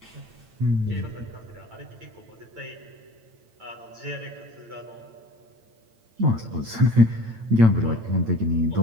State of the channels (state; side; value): late; left; 8.9 ms